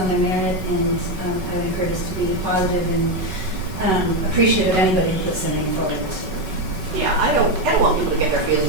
their merit, and I would encourage us to be positive and appreciative of anybody who puts their name forward to serve. Yeah, I don't want people to get their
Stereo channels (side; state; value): left; late; 5.3 ms